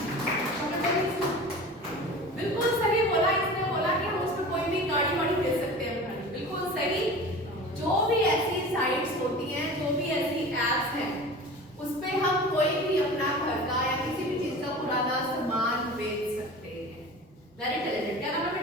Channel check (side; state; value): both; normal; correlation 0.37